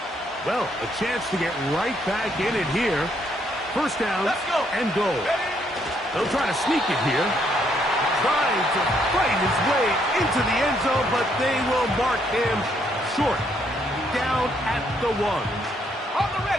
Well, a chance to get right back in it here. 1st down and goal. They'll try to sneak it here. Trying to fight his way into the end zone, but they will mark him short. Down at the 1. On the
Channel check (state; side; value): normal; both; correlation 0.72